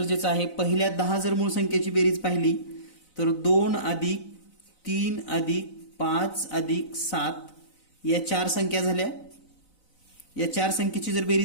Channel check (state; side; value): late; right; 4.0 ms